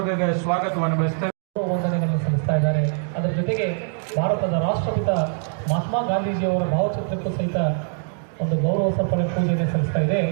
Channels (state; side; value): silent; left; 63 dB below the other